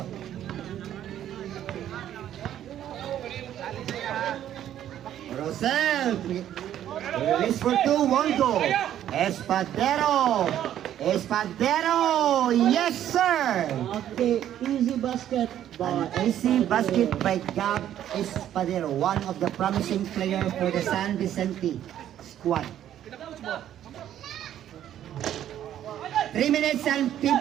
Rosel, release for 2, 1 goal. Espadero, yes sir. Okay, easy basket. An easy basket by Gab Espadero, one of the promising players for the San Vicente squad. 3 minutes and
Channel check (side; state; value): left; quieter; 11.2 dB